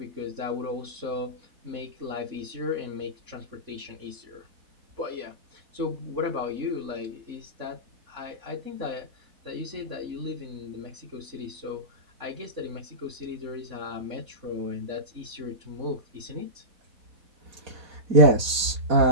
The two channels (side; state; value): left; late; 4.1 ms